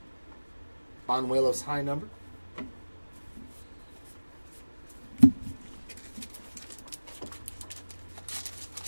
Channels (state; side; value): inverted; both; correlation -1.00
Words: Banuelos high number.